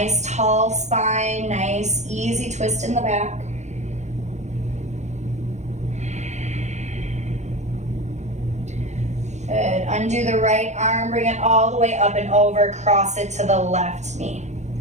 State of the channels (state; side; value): late; left; 0.33 ms